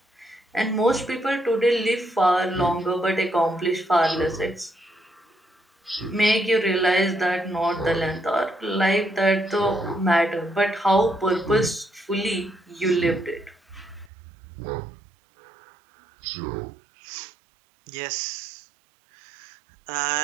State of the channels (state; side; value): drops out; left; at 14.1 s